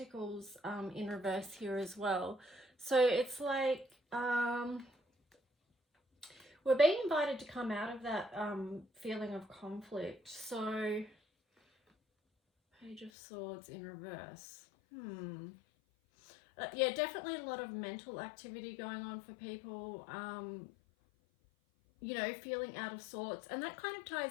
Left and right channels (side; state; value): right; drops out; at 13.1 s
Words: in reverse here as well. So it's like we're being invited to come out of that feeling of conflict. So Page of Swords in reverse. Yeah, definitely a lot of mental activity going on for people, you know, feeling out of sorts. And that kind of